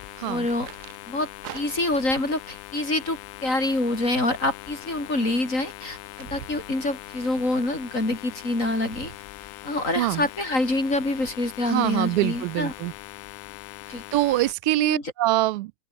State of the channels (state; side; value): late; right; 3.9 ms